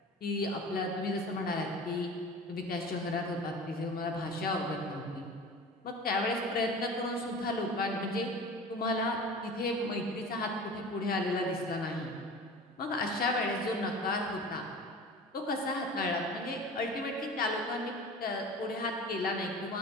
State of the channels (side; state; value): both; normal; correlation 0.37